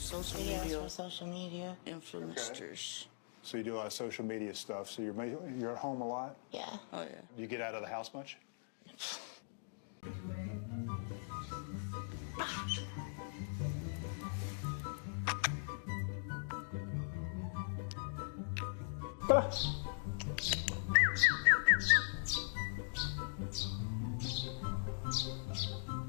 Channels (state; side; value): silent; right; digital silence